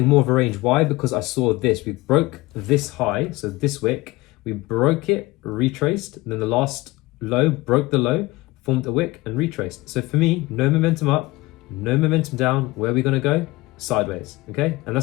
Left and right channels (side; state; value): right; quieter; 20.6 dB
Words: more of a range. Why? Because I saw this. We broke this high, so this wick. We broke it, retraced, and then the last low broke the low, formed a wick and retraced. So for me, no momentum up, no momentum down. Where are we going to go? Sideways, okay? And